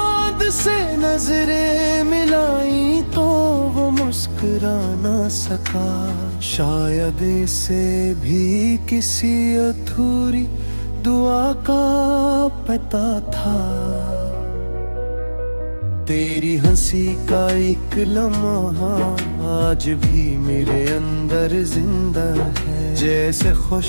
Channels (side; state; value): both; inverted; correlation -1.00